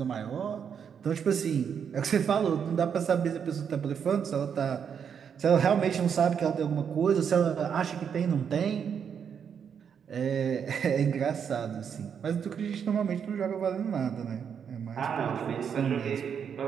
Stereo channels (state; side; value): quieter; left; 7.5 dB